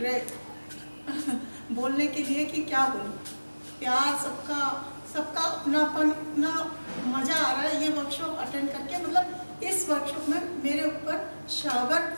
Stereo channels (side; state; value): both; inverted; correlation -1.00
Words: रहे बोलने के लिए कि क्या बोलूं। प्यार सबका अपनापन, इतना मज़ा आ रहा है ये वर्कशॉप अटेंड करके। मतलब इस वर्कशॉप में मेरे ऊपर शावर